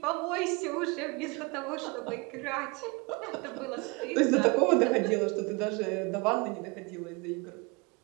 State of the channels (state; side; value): quieter; left; 28.1 dB